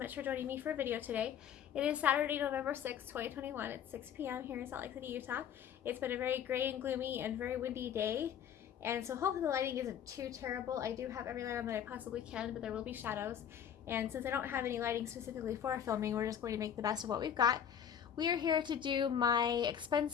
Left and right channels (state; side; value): quieter; right; 9.0 dB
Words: for joining me for a video today. It is Saturday, November 6th, 2021. It's 6 p.m. here in Salt Lake City, Utah. It's been a very gray and gloomy and very windy day, and so hopefully the lighting isn't too terrible. I do have every light on that I possibly can, but there will be shadows. And since I don't have any lighting specifically for filming, we're just going to make the best of what we've got. We are here to do my expense